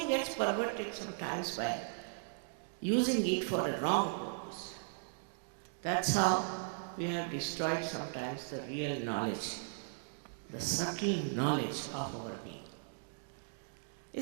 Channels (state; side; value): silent; left; digital silence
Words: gets perverted sometimes by using it for a wrong purpose. That's how we have destroyed sometimes the real knowledge, the subtle knowledge of our being.